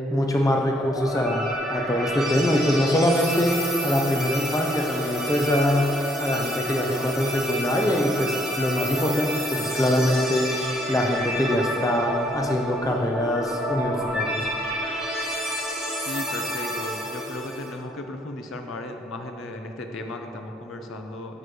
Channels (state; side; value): normal; both; correlation 0.68